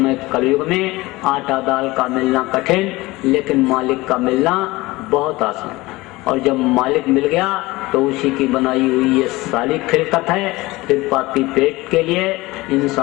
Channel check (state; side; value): quieter; right; 20.6 dB